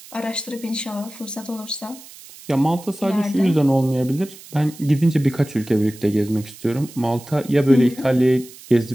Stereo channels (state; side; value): noise; right; hiss, 19 dB below the sound